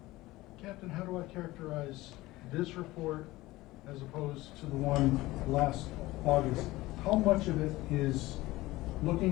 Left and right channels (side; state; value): right; quieter; 18.7 dB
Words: Captain, how do I characterize this report as opposed to the one last August? How much of it is